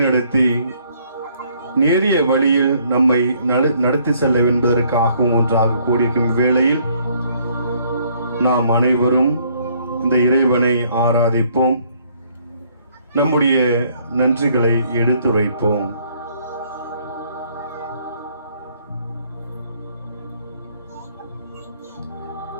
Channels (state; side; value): inverted; both; correlation -0.65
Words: நேரிய வழியில் நம்மை நடத்தி செல்ல என்பதற்காகவும் ஒன்றாக கூடியிருக்கும் வேளையில் நாம் அனைவரும் இந்த இறைவனை ஆராதிப்போம், நம்முடைய நன்றிகளை எடுத்துரைப்போம்.